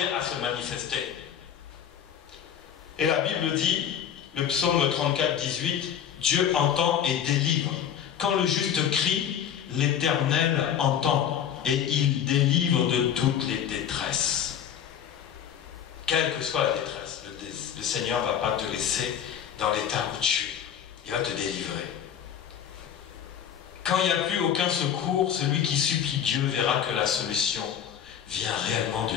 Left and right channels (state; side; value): quieter; right; 9.0 dB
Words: à se manifester. Et la Bible dit, le psaume 34, 18, Dieu entend et délivre. Quand le juste crie, l'Éternel entend et il délivre de toutes les détresses. Quelle que soit la détresse, le Seigneur ne va pas te laisser dans l'état où tu es. Il va te délivrer. Quand il n'y a plus aucun secours, celui qui supplie Dieu verra que la solution vient réellement de